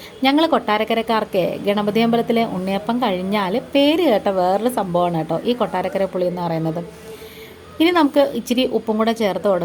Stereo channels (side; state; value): both; identical; correlation 1.00